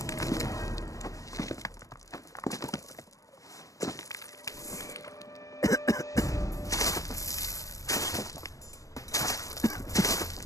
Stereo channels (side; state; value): right; late; 0.16 ms